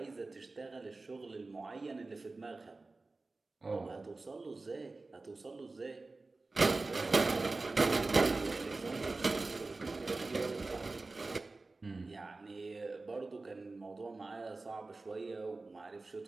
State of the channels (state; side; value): quieter; left; 3.5 dB